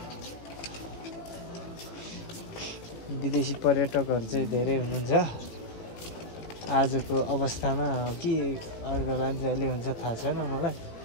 विदेशी पर्यटकहरू चाहिँ धेरै हुनुहुन्छ आजको अवस्थामा कि अरू बेला जहिले हुन्छ थाहा छैन मलाई।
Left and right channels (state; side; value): late; right; 18 ms